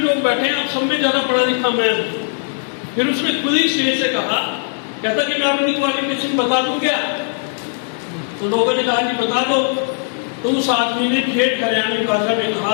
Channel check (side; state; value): right; silent; digital silence